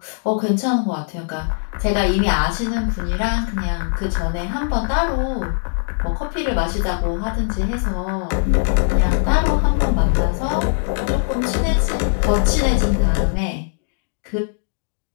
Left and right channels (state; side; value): silent; right; digital silence